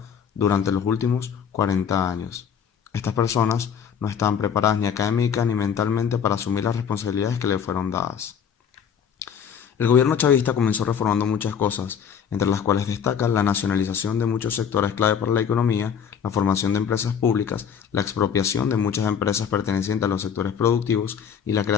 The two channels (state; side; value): quieter; right; 7.6 dB